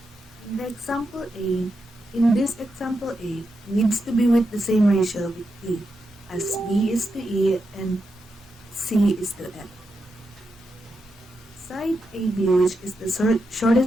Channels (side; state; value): both; normal; correlation 0.86